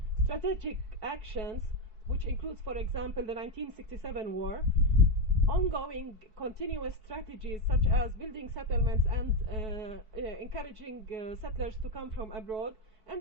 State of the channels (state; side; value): late; left; 4.6 ms